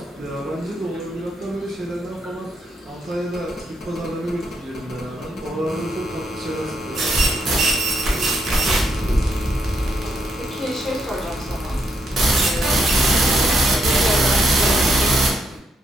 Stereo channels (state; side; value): normal; both; correlation 0.77